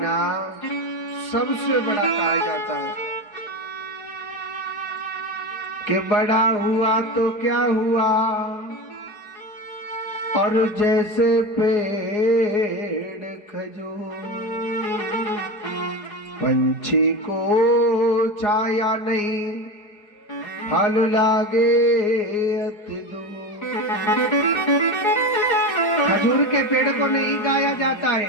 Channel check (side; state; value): right; late; 4.8 ms